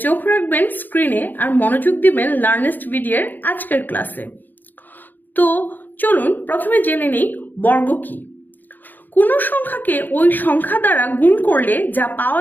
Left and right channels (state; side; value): late; right; 0.088 ms